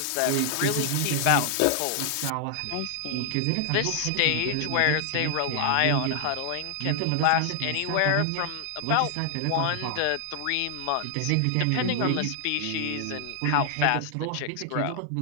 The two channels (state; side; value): different; both; correlation 0.00